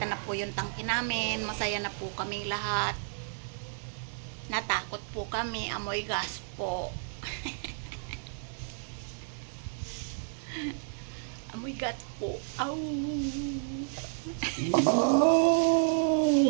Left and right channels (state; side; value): silent; left; digital silence